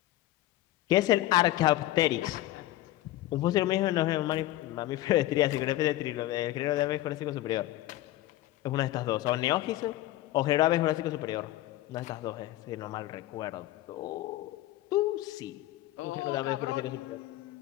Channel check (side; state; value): right; quieter; 15.6 dB